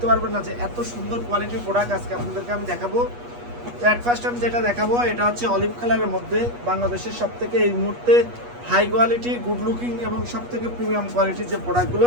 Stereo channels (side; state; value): left; late; 8.3 ms